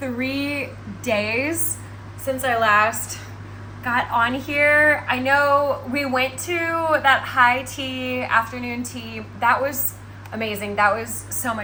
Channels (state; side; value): identical; both; correlation 1.00